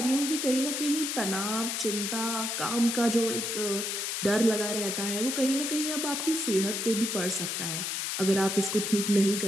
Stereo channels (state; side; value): noise; left; hiss, 2 dB below the sound